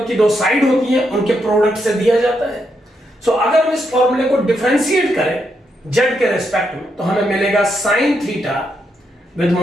की दो साइड होती है उनके प्रोडक्ट से दिया जाता है। सो अगर हम इस फॉर्मूले को डिफरेंशिएट करें z के रेस्पेक्ट में, तो हमें मिलेगा sin theta with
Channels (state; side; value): normal; both; correlation 0.81